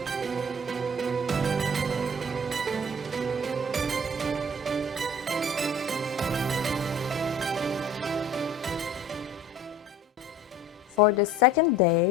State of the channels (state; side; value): normal; both; correlation 0.46